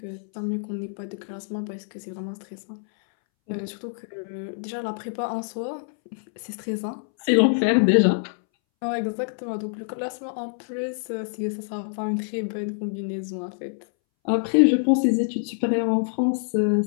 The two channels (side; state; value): right; silent; 61 dB below the other